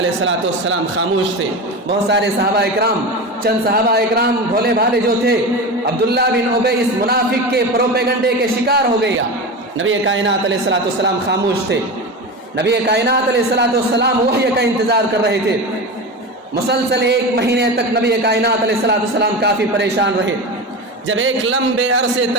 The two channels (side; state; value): both; normal; correlation 0.24